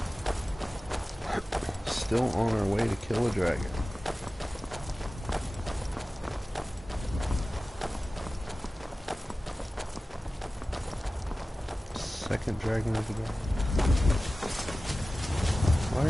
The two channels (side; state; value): both; normal; correlation 0.96